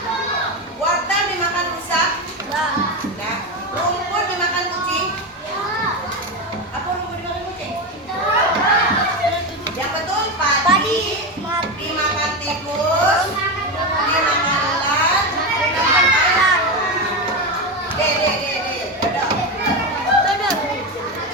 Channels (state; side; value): normal; both; correlation 0.15